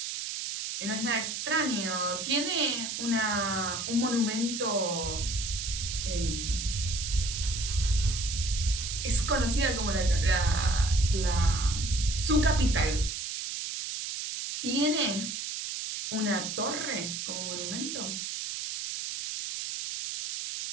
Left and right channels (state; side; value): noise; right; hiss, 5 dB below the sound